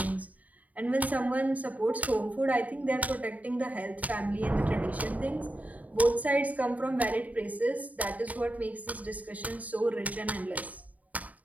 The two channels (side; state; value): left; late; 0.073 ms